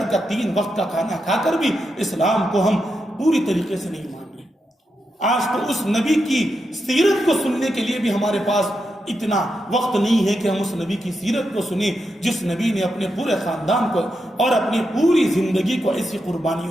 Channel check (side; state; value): both; normal; correlation 0.85